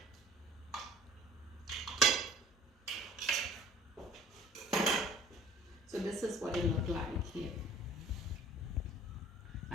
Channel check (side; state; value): both; normal; correlation 0.49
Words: So this is what it looked like here.